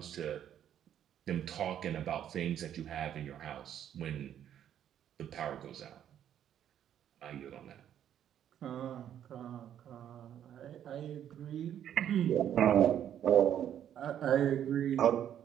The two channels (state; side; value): quieter; left; 10.2 dB